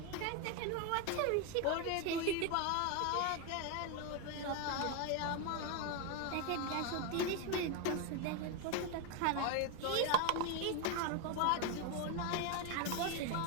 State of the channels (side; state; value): both; different; correlation 0.02